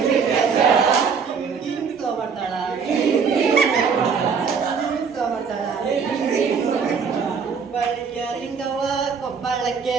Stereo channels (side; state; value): left; quieter; 6.0 dB